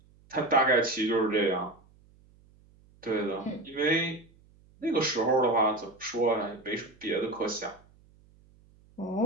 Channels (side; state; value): right; noise; hum, 29 dB below the sound